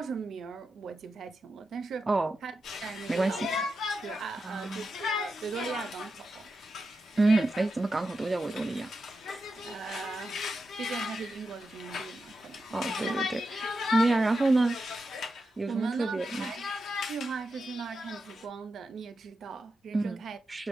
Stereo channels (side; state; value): both; normal; correlation 0.88